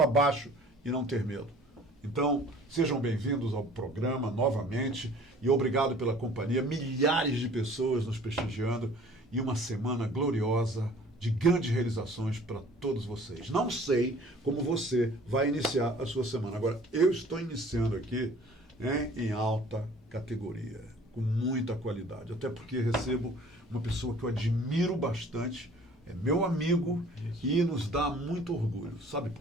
baixo e não ter medo. Então, sejam bem-vindos ao programa novamente e obrigado pela companhia. Milhares de pessoas nos prestigiando e uma semana gloriosa de grandes realizações para todos vocês. Não sei como você vai iniciar a sua semana. Agora, eu estou iniciando aqui em alta categoria, com muita qualidade, até porque recebo uma pessoa que eu admiro bastante, é meu amigo e nos dá muito orgulho. Sabe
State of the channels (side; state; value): both; normal; correlation 0.50